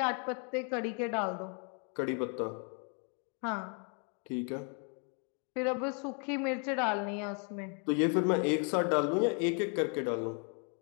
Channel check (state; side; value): quieter; right; 39.6 dB